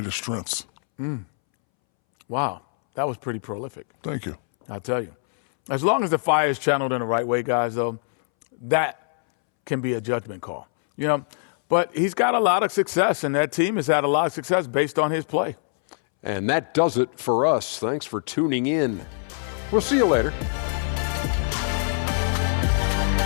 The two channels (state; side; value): silent; right; 63 dB below the other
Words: strengths. Wow, that was pretty prolific. Thank you. I'll tell you. As long as the fire is channeled in the right way, guys, though, that can be a judgment call. You know, but he's got a lot of success, and that team has had a lot of success based on his play. And that does it for us. Thanks for tuning in. We'll see you later.